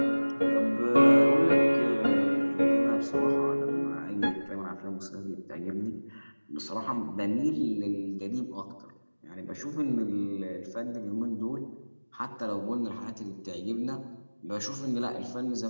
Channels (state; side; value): inverted; both; correlation -1.00